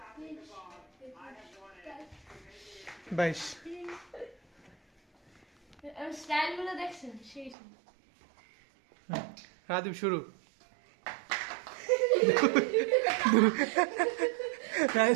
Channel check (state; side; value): drops out; left; at 7.6 s